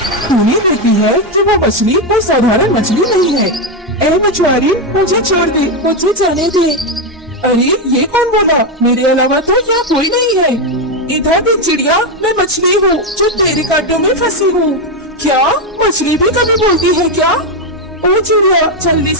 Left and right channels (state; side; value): normal; both; correlation 0.07